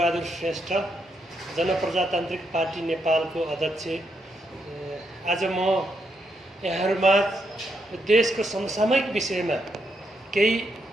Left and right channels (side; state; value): both; normal; correlation 0.79